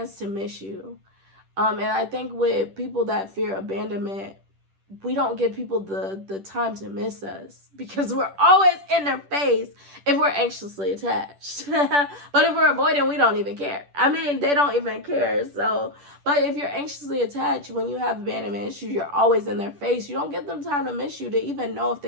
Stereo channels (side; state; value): left; late; 10 ms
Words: to miss you. And I think with people that fear abandonment, we don't give people the time to miss us, because we're always in their face if we're anxiously attached. But if we're avoiding, we don't even care. I mean, they don't even care. So, but if you're anxiously attached, when you have abandonment issues, you're always in their face. You don't give them time to miss you, to even know if